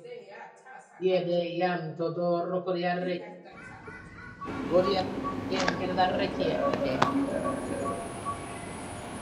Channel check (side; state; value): both; identical; correlation 1.00